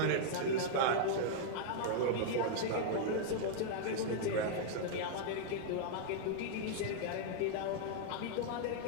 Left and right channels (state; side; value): different; both; correlation -0.01